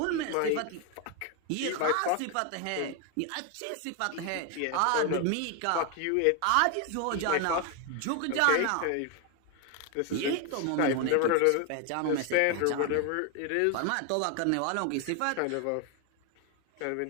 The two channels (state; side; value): different; both; correlation 0.01